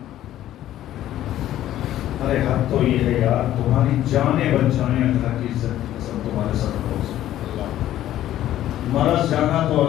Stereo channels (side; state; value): right; quieter; 12.9 dB